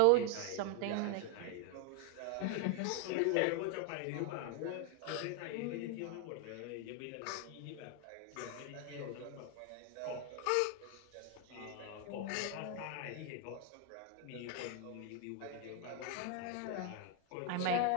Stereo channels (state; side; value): different; both; correlation 0.01